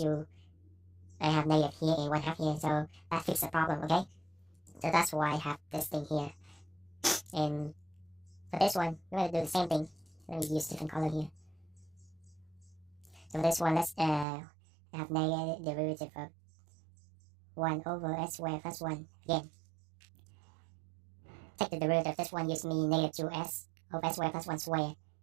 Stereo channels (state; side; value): drops out; left; at 14.2 s